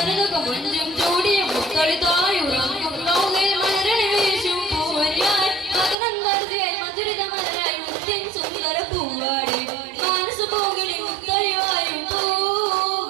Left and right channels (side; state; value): left; drops out; at 6.0 s